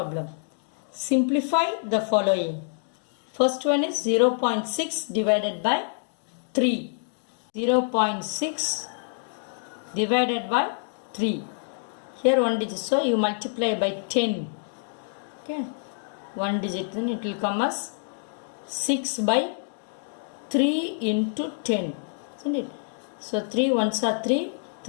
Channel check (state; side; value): silent; right; digital silence